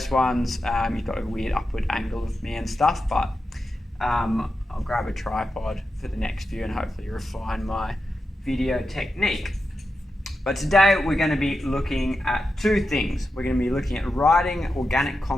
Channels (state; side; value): normal; both; correlation 0.89